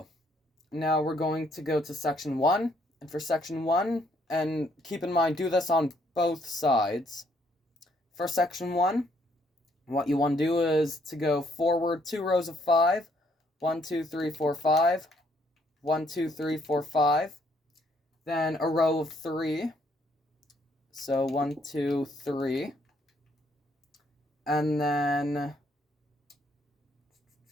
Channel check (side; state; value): both; normal; correlation 0.68